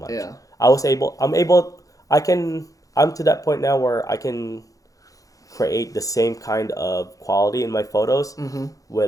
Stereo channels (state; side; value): late; right; 0.17 ms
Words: Yeah. I'm to that point now where I can create the same kind of quality in my photos